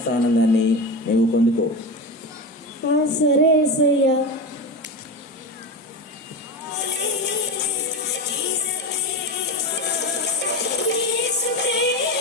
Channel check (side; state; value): both; normal; correlation 0.23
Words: ఆనందాన్ని నీవు పొందుకో. సరే యేసయ్యా.